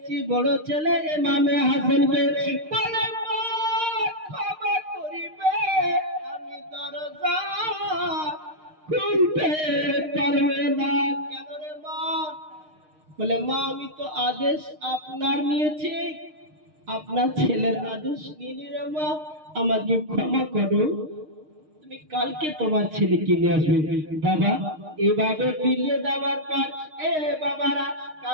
বড় ছেলে ইমামে হাসানকে। বলে মা ক্ষমা করিবে, আমি দরজা খুলতে পারবে না। কেন রে মা? বলে মা আমি তো আদেশ আপনার নিয়েছি, আপনার ছেলের আদেশ নিয়ে রে মা, আমাকে ক্ষমা করো, তুমি কালকে তোমার ছেলেকে নিয়ে আসবে। বাবা এভাবে ফিরিয়ে দেওয়ার পর এ বাবারা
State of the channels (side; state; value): left; late; 6.5 ms